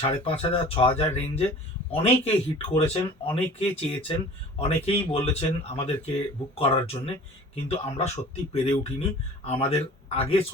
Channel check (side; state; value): both; normal; correlation 0.44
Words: 5,500-6,000 রেঞ্জে অনেকে হিট করেছেন, অনেকে চেয়েছেন, অনেকেই বলেছেন আমাদেরকে বুক করার জন্যে, কিন্তু আমরা সত্যি পেরে উঠিনি। আমাদের আগে